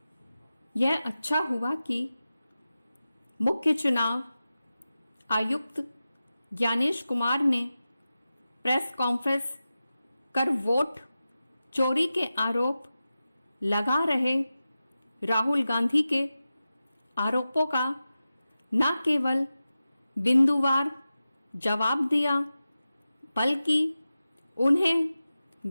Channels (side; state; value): both; inverted; correlation -0.94